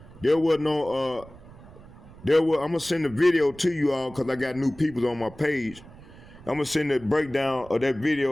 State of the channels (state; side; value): noise; right; rumble, 20 dB below the sound